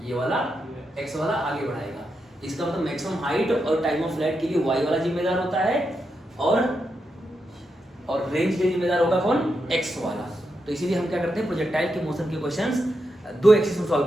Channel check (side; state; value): both; normal; correlation 0.85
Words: ये वाला x वाला आगे बढ़ाएगा। इसका मतलब मैक्सिमम हाइट और टाइम ऑफ फ्लाइट के लिए y वाला जिम्मेदार होता है, और रेंज के लिए जिम्मेदार होगा कौन, x वाला। तो इसीलिए हम क्या करते हैं, प्रोजेक्टाइल के मोशन के क्वेश्चंस 2 एक्सिस में सॉल्व